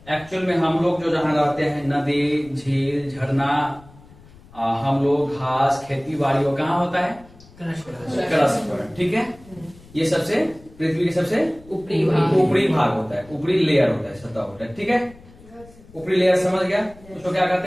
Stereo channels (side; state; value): left; noise; rumble, 23 dB below the sound